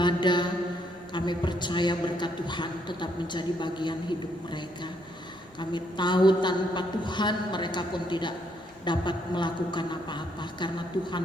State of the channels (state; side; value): noise; right; rumble, 29 dB below the sound